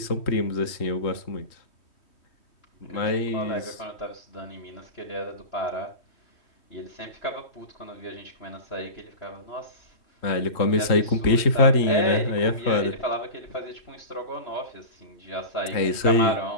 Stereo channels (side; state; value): right; late; 3.1 ms